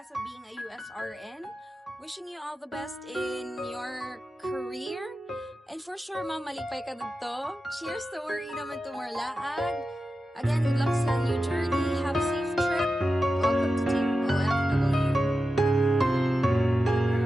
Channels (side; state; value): both; normal; correlation 0.92